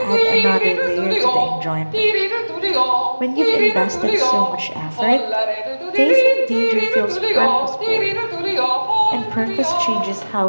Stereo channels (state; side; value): inverted; both; correlation -1.00